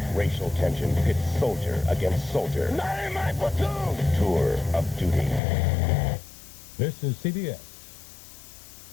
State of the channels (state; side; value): drops out; right; at 5.4 s